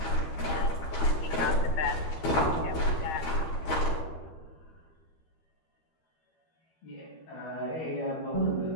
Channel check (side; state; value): right; late; 12 ms